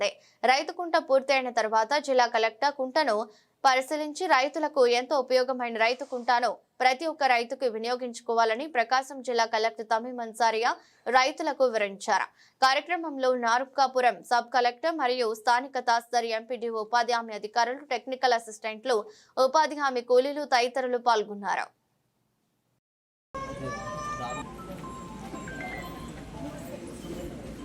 రైతు కుంట పూర్తయిన తర్వాత జిల్లా కలెక్టర్ కుంటను పరిశీలించి రైతులకు ఎంతో ఉపయోగమైన రైతు కుంటాను ప్రతి ఒక్క రైతుకు వినియోగించుకోవాలని ప్రకాశం జిల్లా కలెక్టర్ తమీమ్ అన్సారియా రైతులకు వివరించారు. కార్యక్రమంలో నార్కాపురం సబ్ కలెక్టర్ మరియు స్థానిక తహసీల్దార్, ఎంపీడీఓ, ఉపాధి హామీ అధికారులు, టెక్నికల్ అసిస్టెంట్లు, ఉపాధి హామీ కూలీలు తదితరులు పాల్గొన్నారు.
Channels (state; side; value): identical; both; correlation 1.00